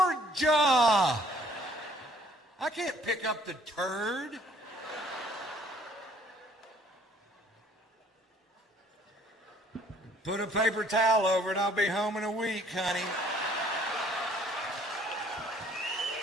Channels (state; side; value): normal; both; correlation 0.59